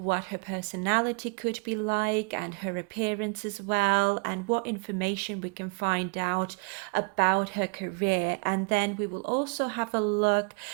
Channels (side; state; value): left; quieter; 31.5 dB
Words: her personality could be like and her appearance as well, and what information we can find out about her career. And then we will also have a look